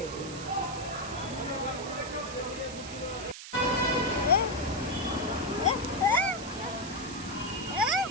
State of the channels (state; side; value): noise; right; hiss, 12 dB below the sound